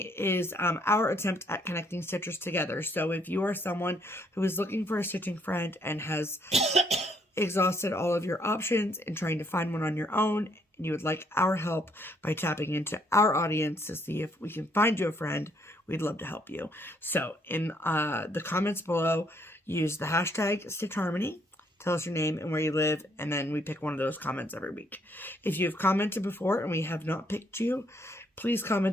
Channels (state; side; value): normal; both; correlation 0.69